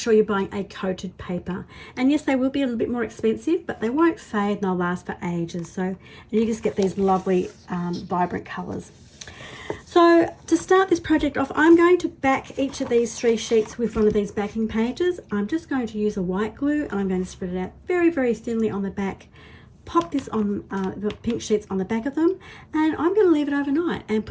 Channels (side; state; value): both; identical; correlation 1.00